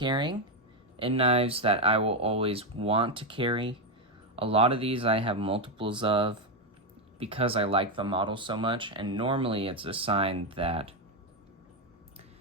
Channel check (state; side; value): normal; both; correlation 0.06